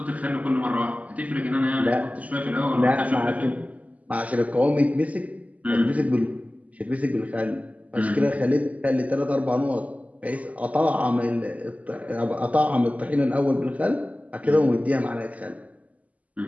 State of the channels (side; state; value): left; late; 0.072 ms